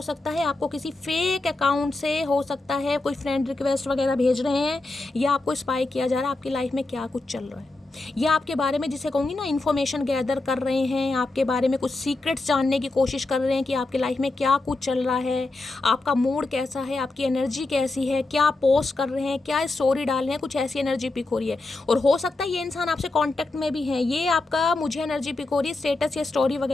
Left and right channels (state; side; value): quieter; right; 3.2 dB